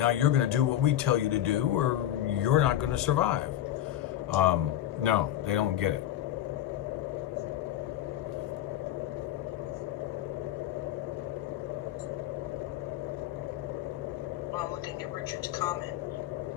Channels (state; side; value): quieter; right; 12.2 dB